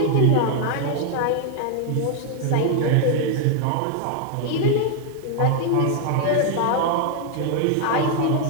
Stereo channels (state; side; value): different; both; correlation 0.00